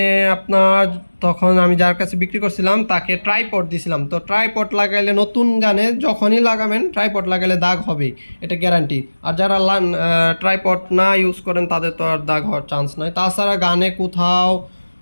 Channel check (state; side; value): inverted; both; correlation -1.00